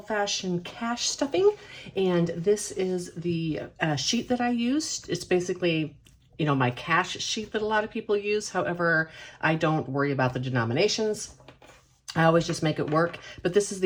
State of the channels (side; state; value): both; identical; correlation 1.00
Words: cash stuffing, and this is the sheet that I used. It's basically, you know, my cash sheet that a lot of people use. However, I don't worry about the denominations. I always just make it work, but this is